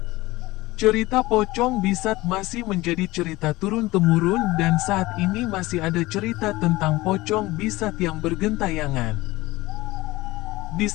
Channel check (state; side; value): quieter; right; 19.6 dB